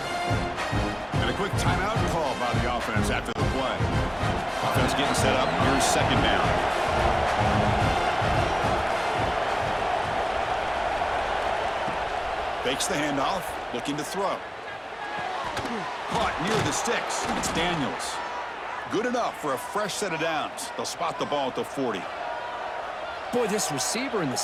And a quick timeout call by the offense after the play. Offense getting set up. Here's 2nd down. Fakes the handoff, looking to throw. Caught near the sticks. It's Daniels. Good enough for a fresh set of downs. They'll spot the ball at the 40. Boy, this receiver in the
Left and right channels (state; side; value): identical; both; correlation 1.00